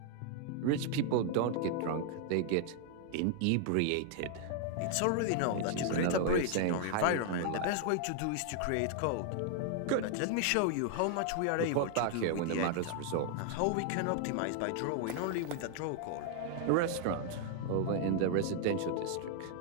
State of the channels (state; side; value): different; both; correlation 0.00